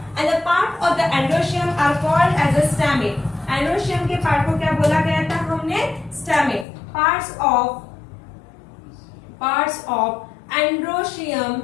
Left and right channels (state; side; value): drops out; right; at 6.7 s